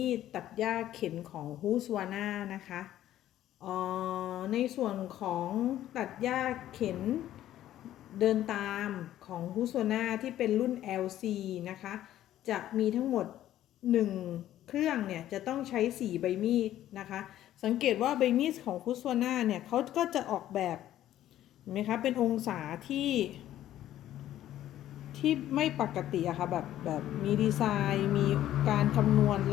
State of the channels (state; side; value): quieter; right; 12.7 dB